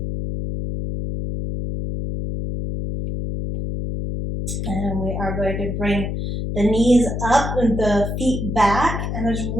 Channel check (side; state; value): left; noise; hum, 3 dB below the sound